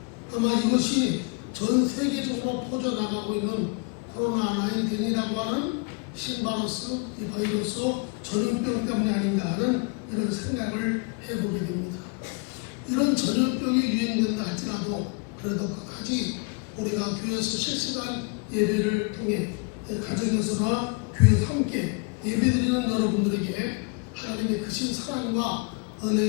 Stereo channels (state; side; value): quieter; right; 31.7 dB